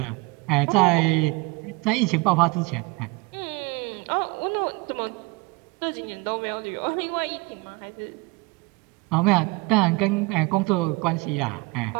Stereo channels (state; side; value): quieter; left; 24.0 dB